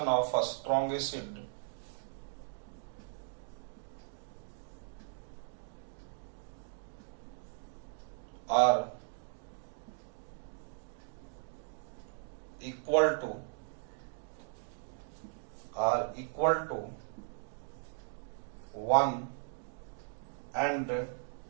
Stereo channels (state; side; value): silent; left; digital silence